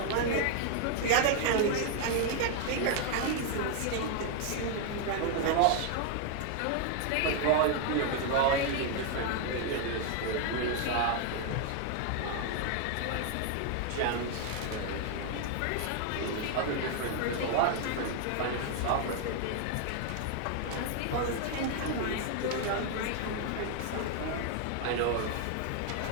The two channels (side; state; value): both; different; correlation 0.00